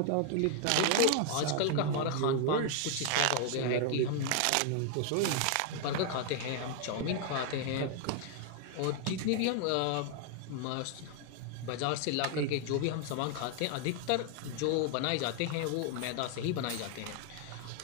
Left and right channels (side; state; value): both; different; correlation 0.00